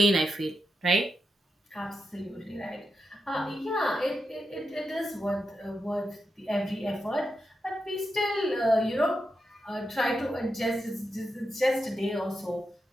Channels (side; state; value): both; normal; correlation 0.87